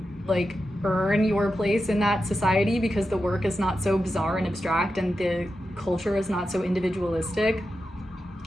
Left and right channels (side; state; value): both; normal; correlation 0.90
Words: like earn your place in that society, because the work is not so bizarre and abstract and the culture is not so individualistic.